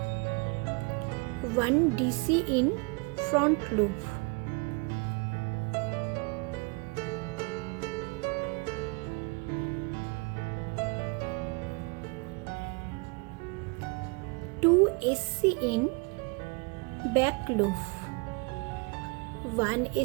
One DC in front loop. Two SC in back loop. One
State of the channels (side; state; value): left; quieter; 30.0 dB